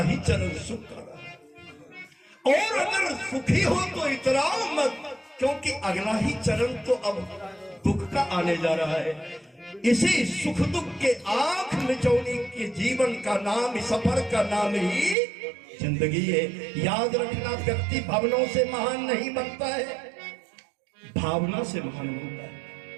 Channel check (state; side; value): drops out; left; at 15.2 s